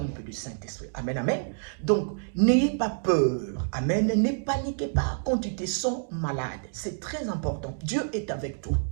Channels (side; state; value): left; silent; digital silence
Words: du Saint-Esprit. Amen, amen. Donc, n'ayez pas peur. Amen. Ne paniquez pas quand tu te sens malade. C'est très important. Dieu est avec toi.